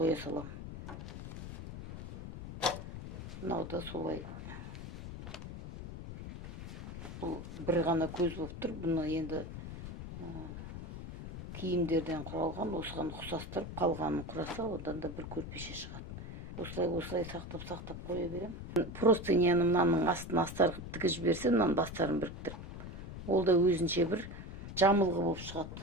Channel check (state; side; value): noise; left; rumble, 9 dB below the sound